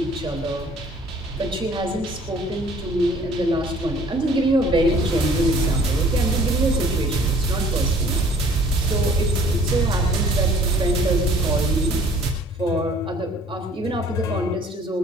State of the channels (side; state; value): both; normal; correlation 0.54